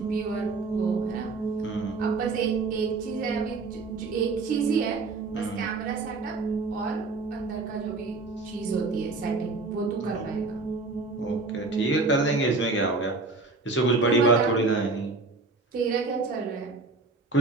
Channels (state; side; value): quieter; left; 3.7 dB